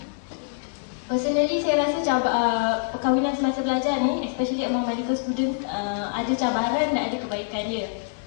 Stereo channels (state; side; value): silent; right; digital silence